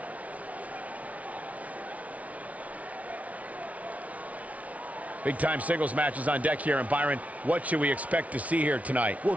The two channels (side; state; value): left; late; 0.068 ms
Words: Big-time singles matches on deck here, and Byron, what should we expect to see here tonight?